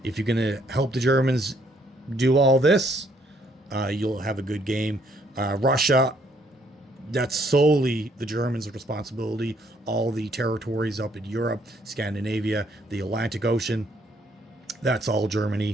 If you're going to help the Germans do all this, you'll have a good game. Russia, that's solely the Germans' responsibility. All the territories up in Europe, Scandinavia, the Atlantic Ocean, that's all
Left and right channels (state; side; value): normal; both; correlation 0.68